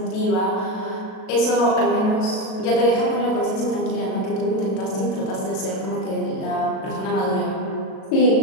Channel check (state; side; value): late; right; 37 ms